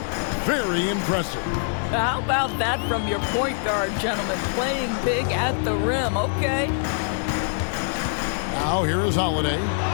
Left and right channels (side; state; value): right; silent; 63 dB below the other